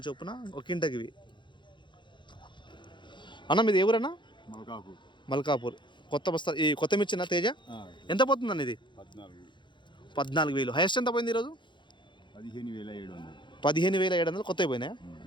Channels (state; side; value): late; right; 0.23 ms